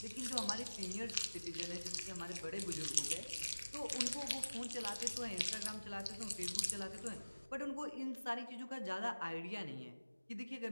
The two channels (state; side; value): inverted; both; correlation -1.00